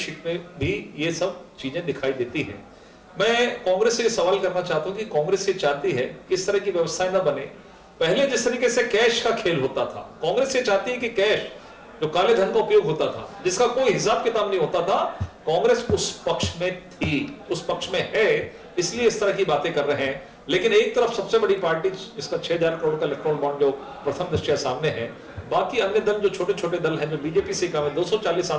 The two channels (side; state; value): both; identical; correlation 1.00